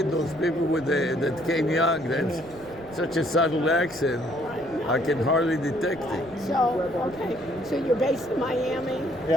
those people that came young. That's such a subtle accent. I can hardly detect it. So, okay. So you're based in Miami,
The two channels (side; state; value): right; noise; rumble, 22 dB below the sound